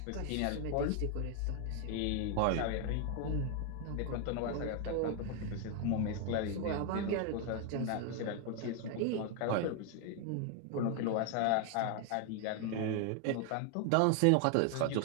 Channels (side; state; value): both; different; correlation 0.00